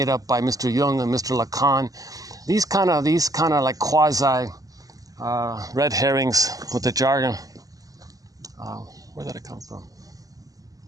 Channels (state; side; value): late; left; 0.17 ms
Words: up by Mr. Jung and Mr. Lacan. These kind of like quasi red herrings with the jargon. Where did it come from?